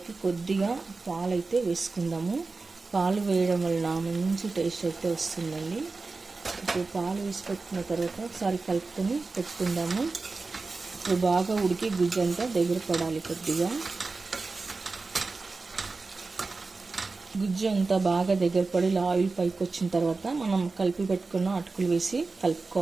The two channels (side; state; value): left; quieter; 3.9 dB